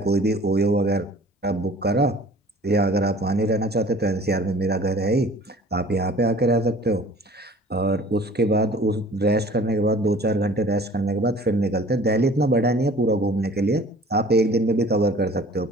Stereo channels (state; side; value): normal; both; correlation 0.48